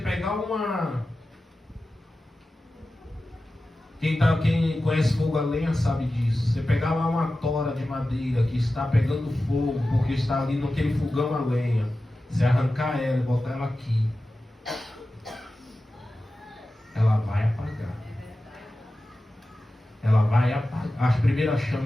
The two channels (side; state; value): both; normal; correlation 0.94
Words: uma... Quem conhece fogo a lenha sabe disso. Você pegar lá uma tora de madeira que está pegando fogo, porque está ali naquele fogão a lenha. Você arrancar ela e botar ela aqui, ela vai apagar. Ela vai apagar. As primeiras